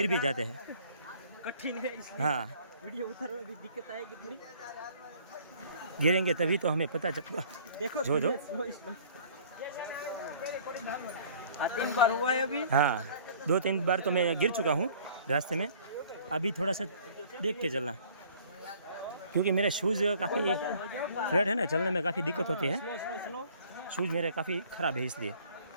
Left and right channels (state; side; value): inverted; both; correlation -0.54